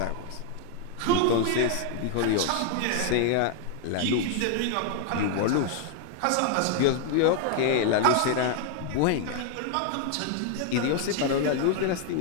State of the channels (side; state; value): both; different; correlation 0.00